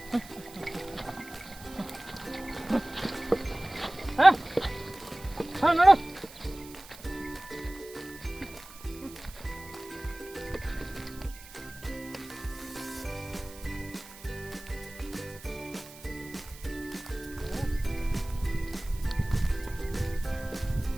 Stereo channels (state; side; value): noise; right; hiss, 18 dB below the sound